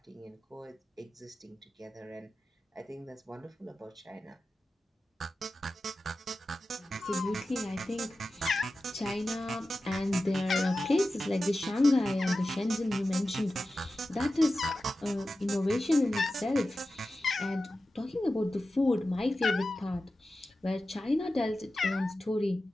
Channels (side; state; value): both; normal; correlation 0.94